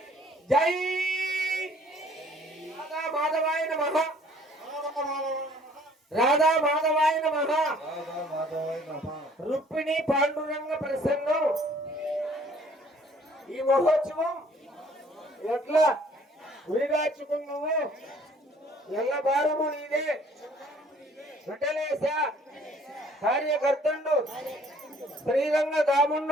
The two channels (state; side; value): normal; both; correlation 0.57